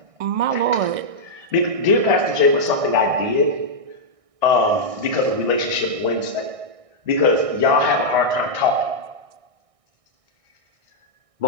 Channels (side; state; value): left; late; 1.6 ms